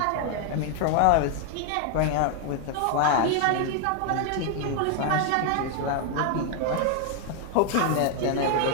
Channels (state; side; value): different; both; correlation 0.00